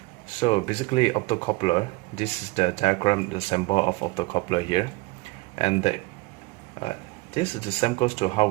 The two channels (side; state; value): left; quieter; 23.1 dB